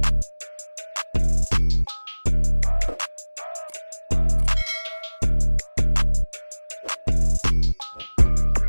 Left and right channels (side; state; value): both; inverted; correlation -1.00